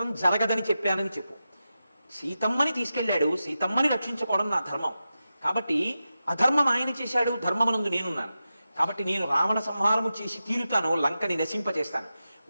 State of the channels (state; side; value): inverted; both; correlation -0.91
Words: జరగదని చెప్పానని చెప్పు. సీతమ్మని తీసుకెళ్ళాడు, సీతమ్మని రక్షించుకోవడం నా ధర్మం. కాబట్టి అధర్మం ఆయన చేశాడు, ధర్మమునందు నేనున్నాను. కాబట్టి నేను రావణ సంహారము చేసి తీరుతాను, లంకని నశింపచేస్తాను.